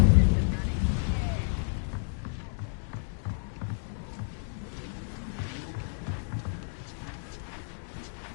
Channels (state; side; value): silent; right; digital silence